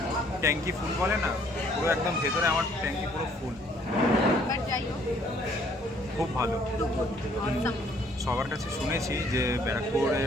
ট্যাঙ্কি ফুল বলে না, পুরো একদম ভেতরে আমার ট্যাঙ্কি পুরো ফুল। খুব ভালো। সবার কাছে শুনেছি যে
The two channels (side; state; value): both; normal; correlation 0.62